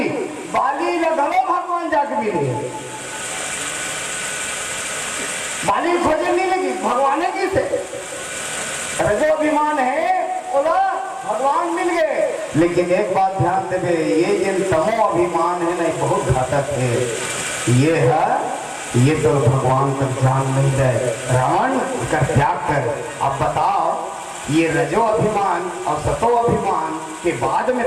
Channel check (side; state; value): both; identical; correlation 1.00